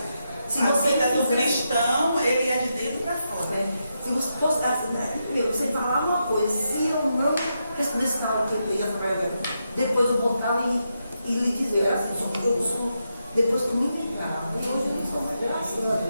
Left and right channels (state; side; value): inverted; both; correlation -0.84